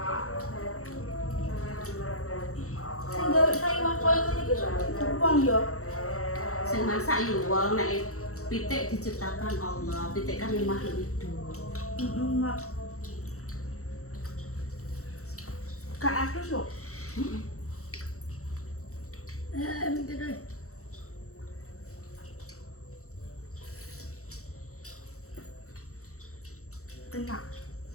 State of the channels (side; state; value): right; late; 0.64 ms